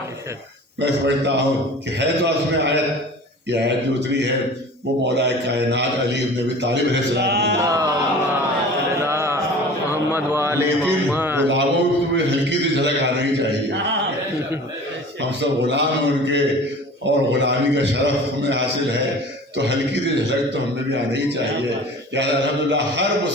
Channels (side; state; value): both; normal; correlation 0.41